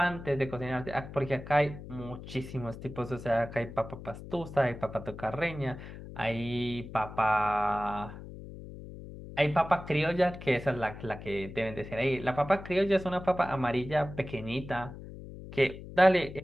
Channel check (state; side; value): noise; left; hum, 13 dB below the sound